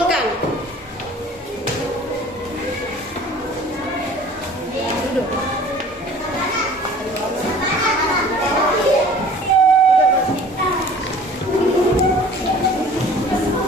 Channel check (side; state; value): both; normal; correlation 0.47